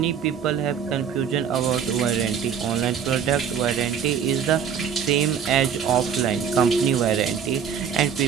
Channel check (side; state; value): left; quieter; 7.6 dB